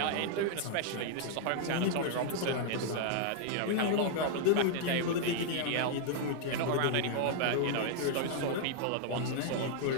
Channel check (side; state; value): both; different; correlation 0.00